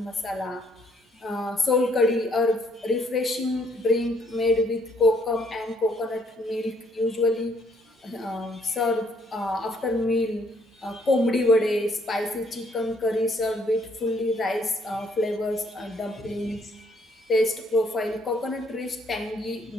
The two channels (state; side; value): normal; both; correlation 0.67